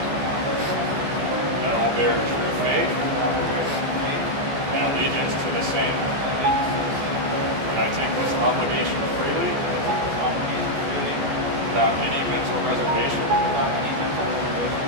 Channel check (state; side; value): late; left; 14 ms